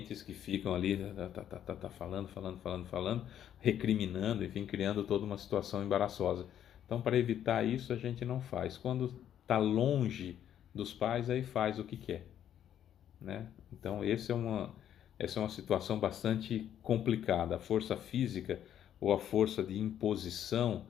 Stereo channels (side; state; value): right; quieter; 10.3 dB